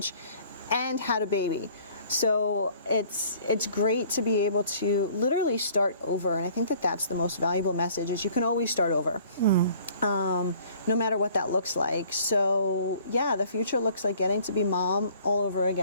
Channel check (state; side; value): inverted; both; correlation -0.54